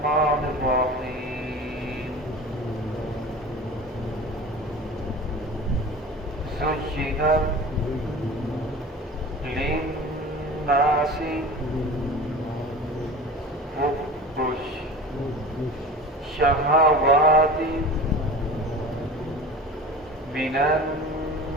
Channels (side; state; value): both; normal; correlation 0.36